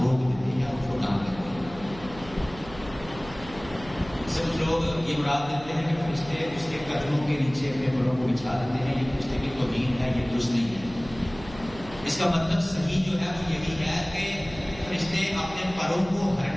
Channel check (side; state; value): right; noise; hum, 16 dB below the sound